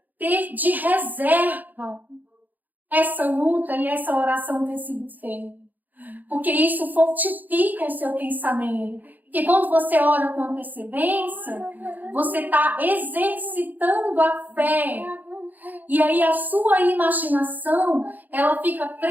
ter de reserva essa luta e essa oração ter sido feita. Porque isso fortifica o seu pensamento. Porque quando você ora com antecedência, você está exercitando a fé. E aí a sua imaginação, ela fica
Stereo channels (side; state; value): left; late; 0.084 ms